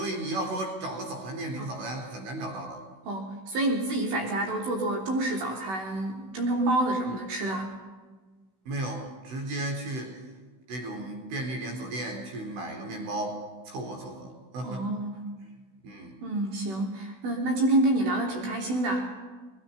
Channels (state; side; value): late; left; 16 ms